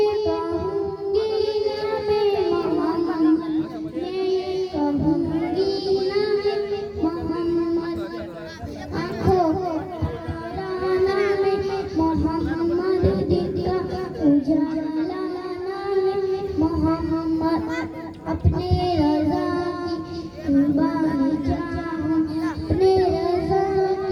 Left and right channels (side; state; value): both; identical; correlation 1.00